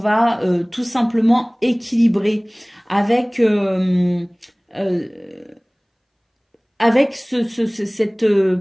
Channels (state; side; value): identical; both; correlation 1.00